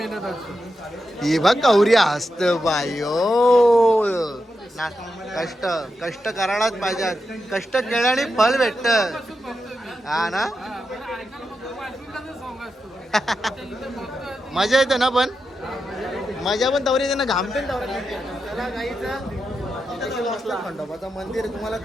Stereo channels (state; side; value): normal; both; correlation 0.88